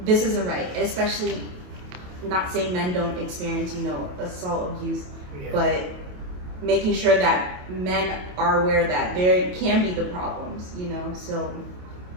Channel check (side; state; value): left; late; 28 ms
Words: this isn't right, and especially not saying men don't experience, you know, assault, abuse, but making sure that men are aware that there can be the problems, you know. So